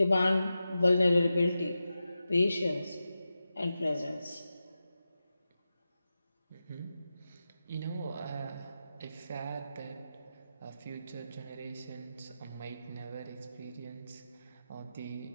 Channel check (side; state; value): both; inverted; correlation -0.92